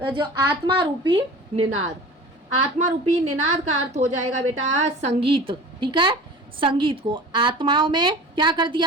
जो आत्मा रूपी निनाद, आत्मा रूपी निनाद का अर्थ हो जाएगा बेटा संगीत। ठीक है। संगीत को आत्माओं में क्या कर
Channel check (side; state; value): both; normal; correlation 0.39